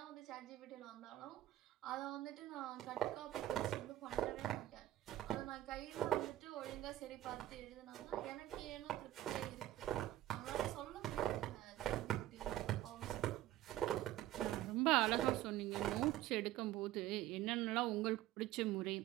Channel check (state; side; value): quieter; left; 14.5 dB